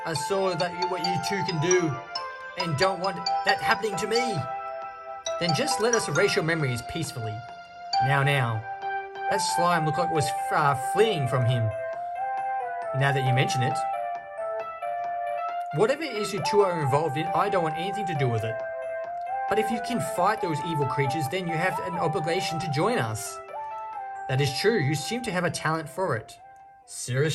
I saw what you two can do and don't want that happening to me. Then just let us erase your memories peacefully. Now, that slime looked like it was fleeing from him. Now that you mention it. Whatever it is you two are involved in, I don't want anything to do with it. But if you can fight those evil creatures, then you have an obligation to join us. That is true, you seem to have a talent for it.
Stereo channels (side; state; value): both; identical; correlation 1.00